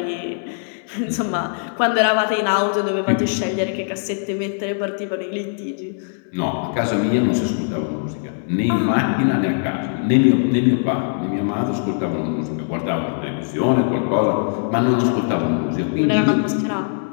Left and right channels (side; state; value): right; silent; digital silence